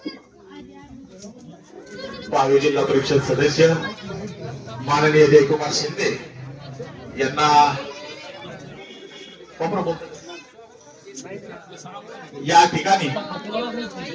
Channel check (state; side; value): identical; both; correlation 1.00